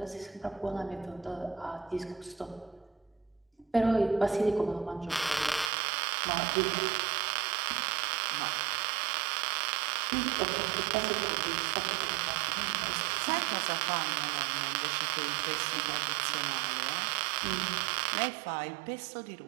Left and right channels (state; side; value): drops out; left; at 5.7 s